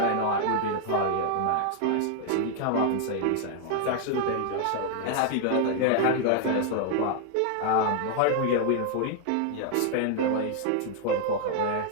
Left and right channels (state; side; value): different; both; correlation 0.00